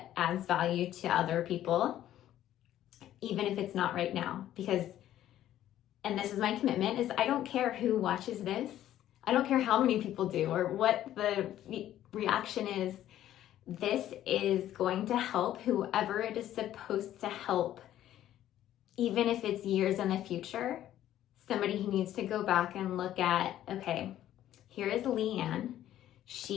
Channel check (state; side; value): quieter; right; 12.4 dB